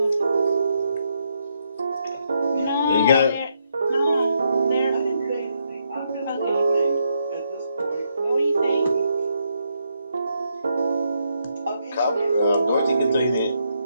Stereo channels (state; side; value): inverted; both; correlation -0.78